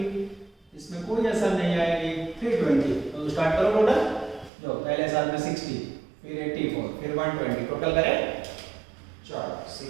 इसमें कोई असर नहीं आएगी 320। तो स्टार्ट करो टोटल, जो पहले साल में 60 फिर 84 फिर 120 टोटल करें। चलो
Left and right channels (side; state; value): left; drops out; at 4.5 s